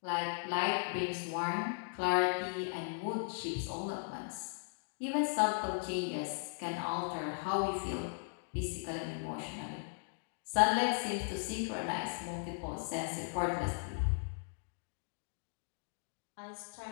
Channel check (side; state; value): right; silent; digital silence